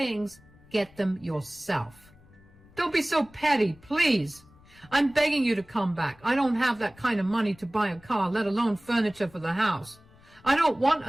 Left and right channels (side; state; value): left; noise; rumble, 26 dB below the sound